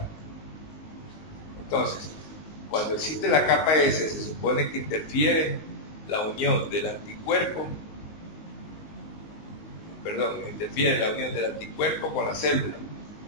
Entonces, cuando existe la capa S, se supone que interfiere la unión del anticuerpo, interfiere la unión del anticuerpo con la célula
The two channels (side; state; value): right; late; 19 ms